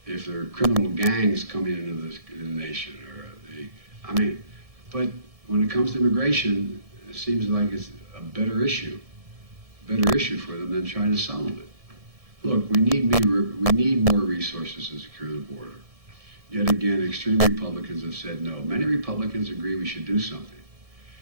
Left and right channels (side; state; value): left; late; 1.7 ms